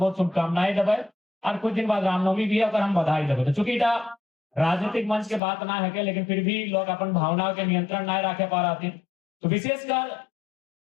शुभकामनाएं देवे और कुछ दिन बाद रामनवमी भी है और हम बधाई देवे। तो चूंकि राजनीतिक मंच के बात ना है लेकिन फिर भी लोग अपन भावनाओं के नियंत्रण ना रखे पा रहे। तो विशेषकर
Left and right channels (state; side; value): drops out; right; at 5.4 s